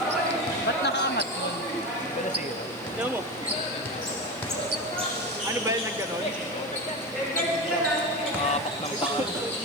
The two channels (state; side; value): noise; left; hiss, 24 dB below the sound